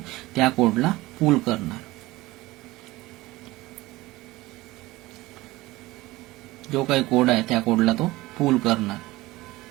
त्या कोडला पुल करणार. जो काही कोड आहे त्या कोडला तो पुल करणार,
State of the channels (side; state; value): left; quieter; 19.3 dB